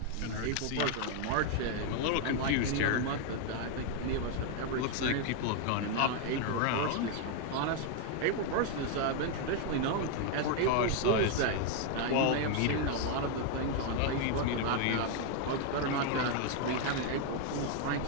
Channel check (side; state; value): both; different; correlation 0.01